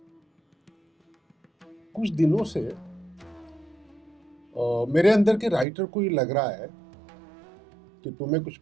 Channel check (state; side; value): drops out; left; at 5.7 s